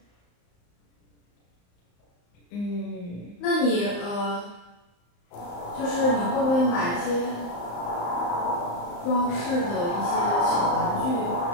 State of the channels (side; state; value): right; late; 34 ms